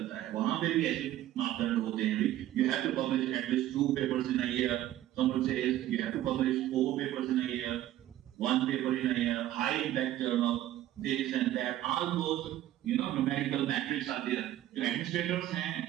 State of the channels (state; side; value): quieter; left; 13.5 dB